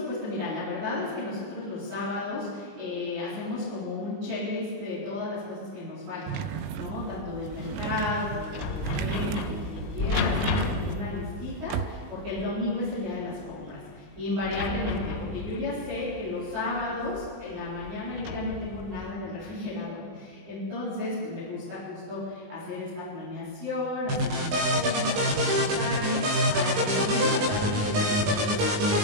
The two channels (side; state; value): left; late; 20 ms